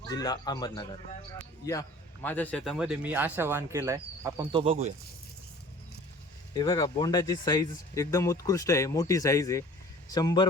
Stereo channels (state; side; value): normal; both; correlation 0.47